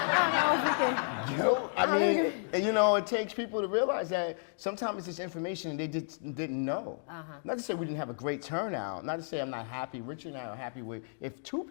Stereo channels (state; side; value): silent; right; digital silence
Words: don't know if we can. Guilt. I mean, and, you know, it takes people to realize that sometimes it's this information they just didn't know. Not to say we didn't have a great turnout. Not to say I'm not happy. Richard and I are happy with if 2